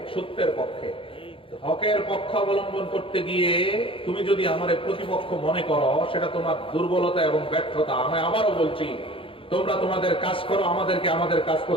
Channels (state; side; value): late; right; 0.26 ms